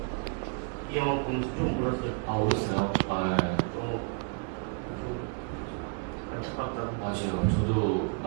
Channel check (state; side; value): quieter; left; 38.4 dB